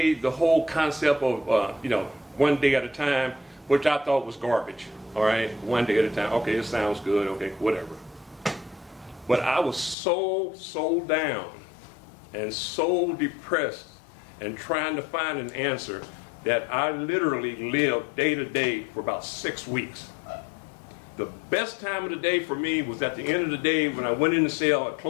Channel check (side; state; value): right; drops out; at 10.0 s